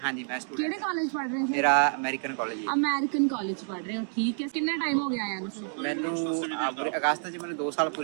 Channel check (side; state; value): left; silent; 59 dB below the other